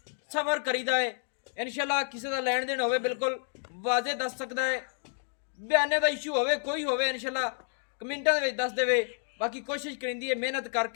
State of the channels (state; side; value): silent; right; 58 dB below the other